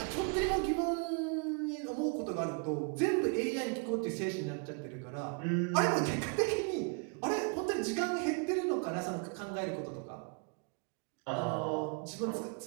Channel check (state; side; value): quieter; left; 36.2 dB